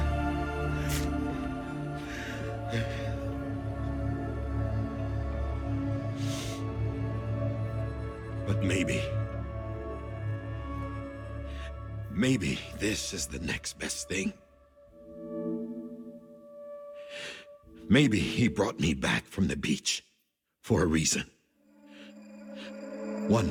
But maybe this is the next best thing. Maybe he brought me back from the beach for a reason. One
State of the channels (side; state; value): both; identical; correlation 1.00